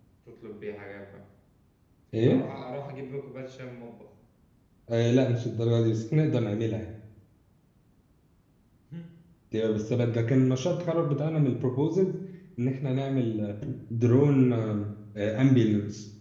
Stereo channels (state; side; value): identical; both; correlation 1.00